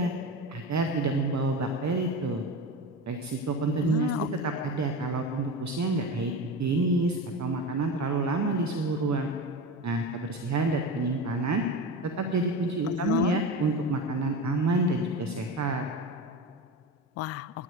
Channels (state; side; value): normal; both; correlation 0.26